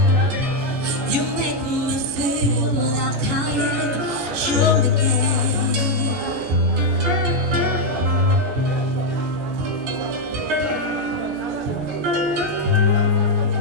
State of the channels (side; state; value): left; late; 14 ms